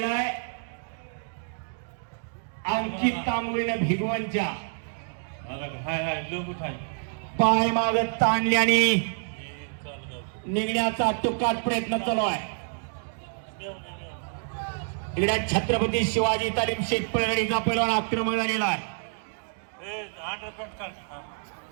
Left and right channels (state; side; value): silent; left; digital silence